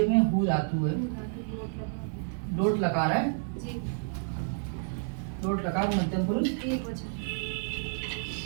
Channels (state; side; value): silent; left; digital silence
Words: में हु धातु है, लोट लकार है, जी लोट लकार मध्यम पुरुष एक वचन।